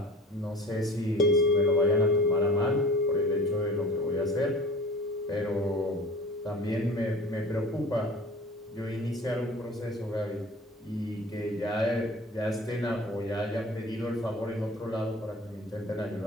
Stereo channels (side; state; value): both; normal; correlation 0.41